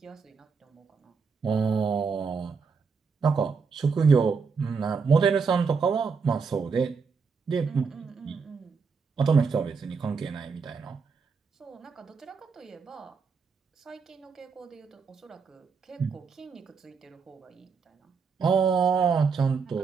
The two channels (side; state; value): left; quieter; 5.4 dB